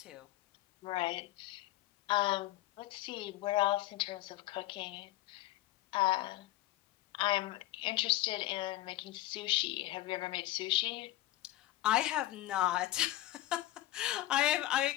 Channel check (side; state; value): right; quieter; 15.8 dB